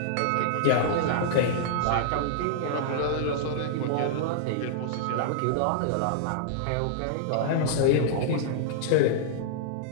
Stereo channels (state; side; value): different; both; correlation -0.01